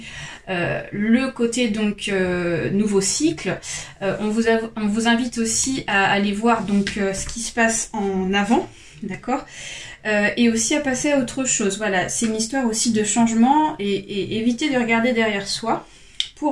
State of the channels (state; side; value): identical; both; correlation 1.00